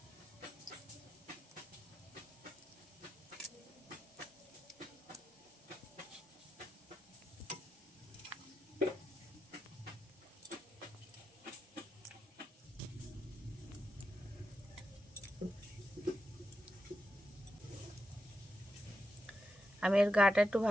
আমি এর গাটা একটু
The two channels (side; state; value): both; normal; correlation 0.88